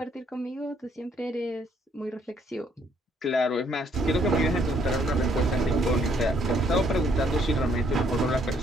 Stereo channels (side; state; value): both; normal; correlation 0.68